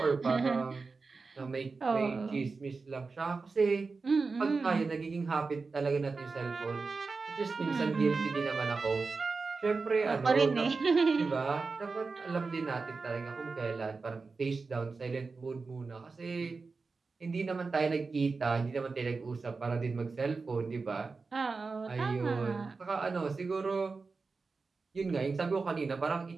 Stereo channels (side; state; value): left; quieter; 4.3 dB